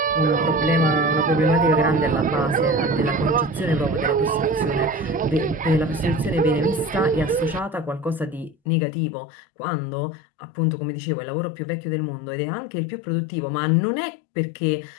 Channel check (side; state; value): right; drops out; at 8.6 s